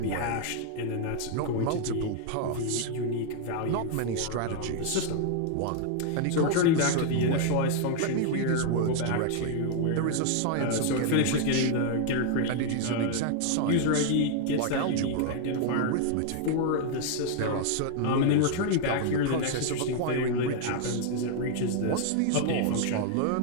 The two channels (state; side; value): different; both; correlation 0.00